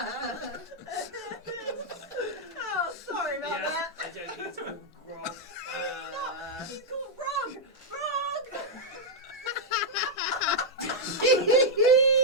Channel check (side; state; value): both; normal; correlation -0.04